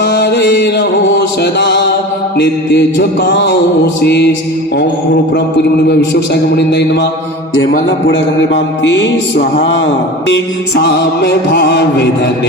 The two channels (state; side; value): normal; both; correlation 0.33